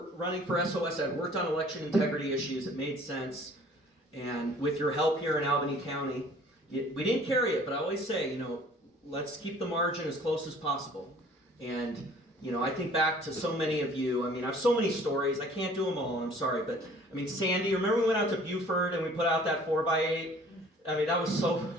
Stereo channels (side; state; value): both; normal; correlation 0.52